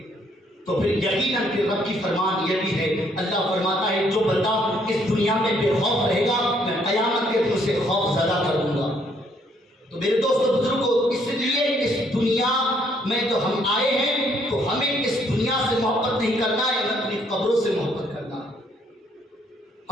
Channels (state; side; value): normal; both; correlation 0.68